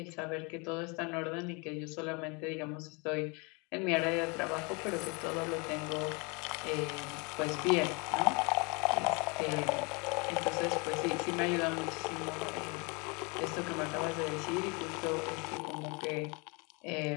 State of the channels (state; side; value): quieter; right; 30.4 dB